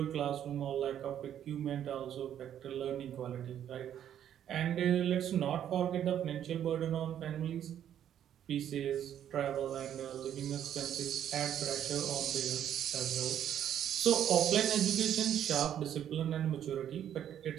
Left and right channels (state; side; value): quieter; left; 10.2 dB